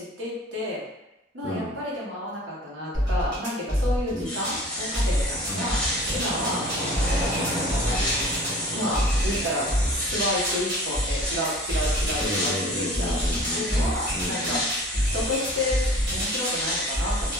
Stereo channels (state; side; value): normal; both; correlation 0.44